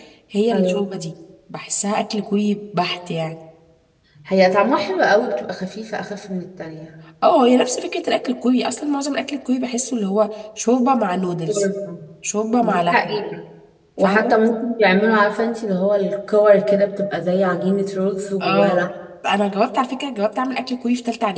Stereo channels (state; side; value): identical; both; correlation 1.00